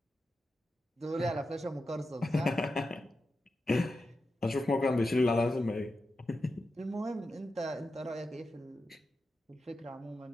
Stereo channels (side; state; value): both; normal; correlation 0.90